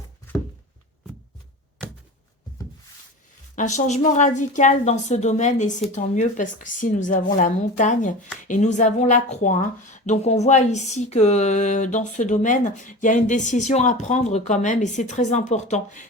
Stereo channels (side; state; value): both; normal; correlation 0.32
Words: Un changement radical dans ce domaine et c'est tant mieux parce que si nous avons la montagne et nous avons la croix. Hein. Donc on voit ici que dans ce domaine, il y a une décision à prendre quand même et c'est très important.